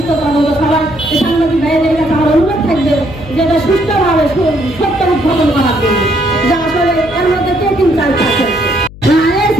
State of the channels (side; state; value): left; noise; hum, 17 dB below the sound